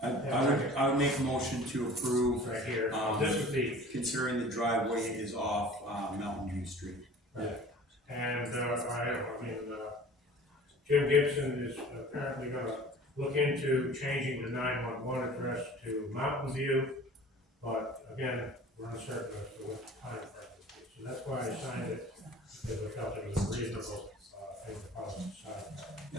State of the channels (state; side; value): normal; both; correlation 0.44